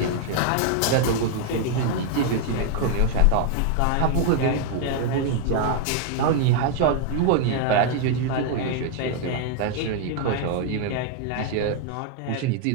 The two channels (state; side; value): different; both; correlation 0.00